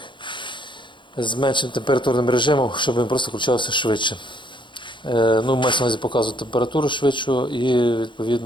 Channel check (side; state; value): right; late; 0.23 ms